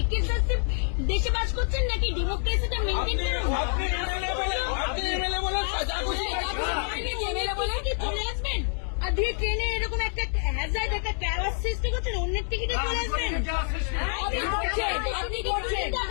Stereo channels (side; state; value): right; silent; digital silence